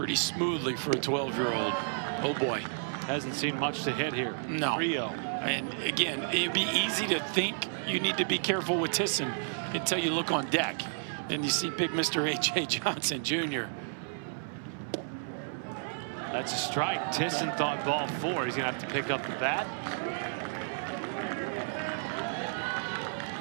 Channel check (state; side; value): silent; left; 57 dB below the other